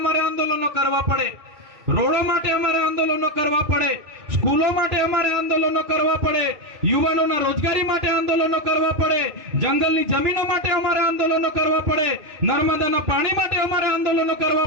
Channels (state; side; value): late; left; 3.1 ms